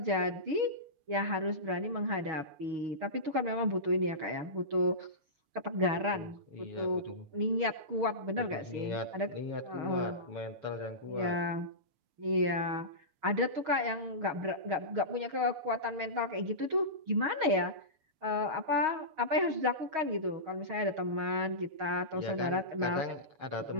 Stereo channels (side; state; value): left; late; 6.3 ms